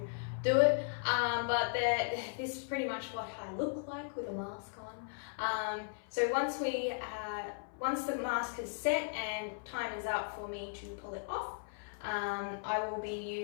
do it. But this is pretty much what I look like with a mask on. So once the mask is set and time is up for me to pull it off, I will be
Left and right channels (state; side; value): silent; right; 53 dB below the other